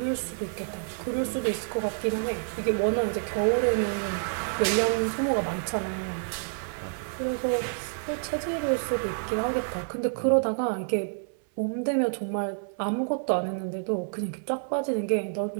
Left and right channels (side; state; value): left; silent; 59 dB below the other